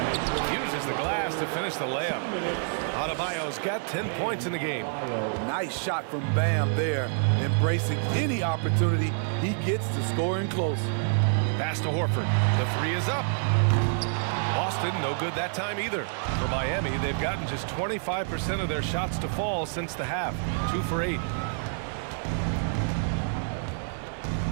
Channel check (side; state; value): left; silent; digital silence